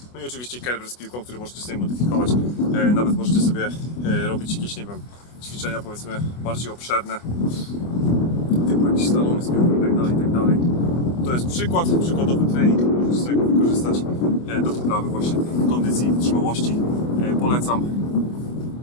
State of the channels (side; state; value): right; late; 24 ms